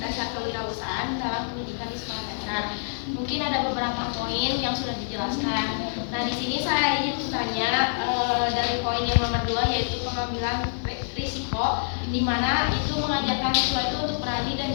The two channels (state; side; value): silent; right; digital silence